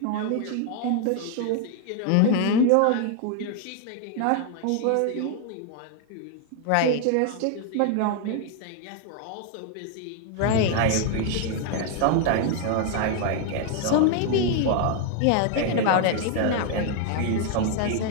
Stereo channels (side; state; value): both; different; correlation 0.00